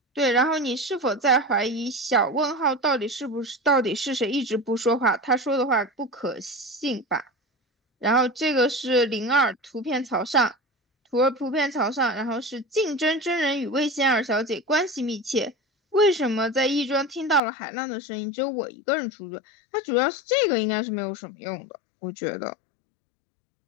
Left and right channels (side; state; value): right; drops out; at 17.4 s